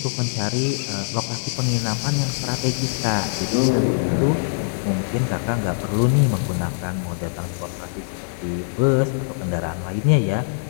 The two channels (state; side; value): silent; right; digital silence